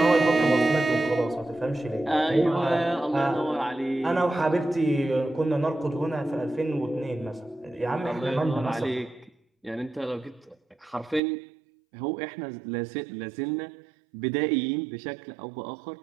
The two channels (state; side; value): drops out; left; at 11.2 s